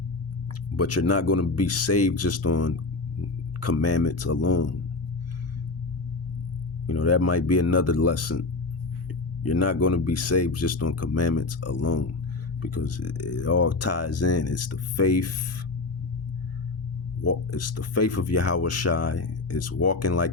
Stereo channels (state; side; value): quieter; right; 3.5 dB